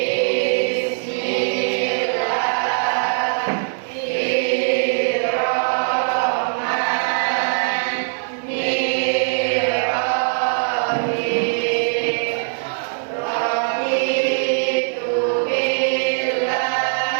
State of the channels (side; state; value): left; silent; 65 dB below the other